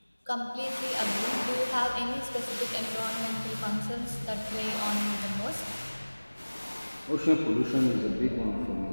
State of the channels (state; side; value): inverted; both; correlation -1.00